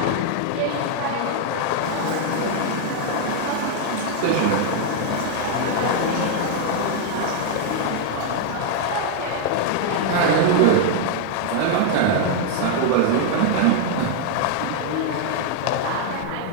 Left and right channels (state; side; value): different; both; correlation 0.00